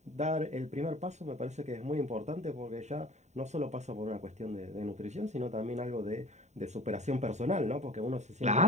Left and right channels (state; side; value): late; left; 0.33 ms